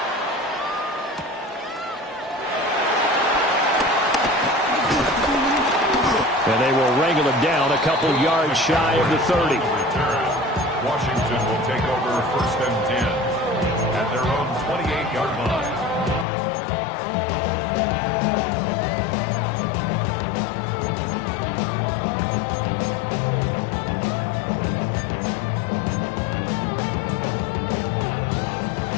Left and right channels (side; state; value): right; drops out; at 16.2 s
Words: And they will wrangle him down a couple yards shy of the 30. Washington will take over 1st and 10 at their own 28-yard line.